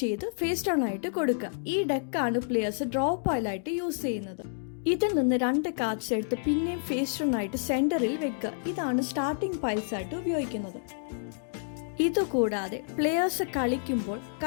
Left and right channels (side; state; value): right; silent; digital silence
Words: ചെയ്ത് ഫേസ് ഡൗൺ ആയിട്ട് കൊടുക്കുക. ഈ ഡെക്കാണ് പ്ലെയേഴ്സ് ഡ്രോ പൈലായിട്ട് യൂസ് ചെയ്യുന്നത്. ഇതിൽ നിന്ന് 2 കാർഡ്സ് എടുത്ത് പിന്നെയും ഫേസ് ഡൗൺ ആയിട്ട് സെന്ററിൽ വെക്കുക. ഇതാണ് സ്റ്റാർട്ടിംഗ് പൈൽസ് ആയിട്ട് ഉപയോഗിക്കുന്നത്. ഇതുകൂടാതെ പ്ലെയേഴ്സ് കളിക്കുമ്പോൾ